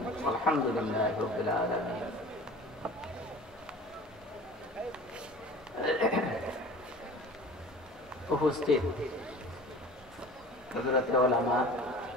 والحمد لله رب العالمين উপস্থিত হযরত উলামা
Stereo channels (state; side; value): normal; both; correlation 0.41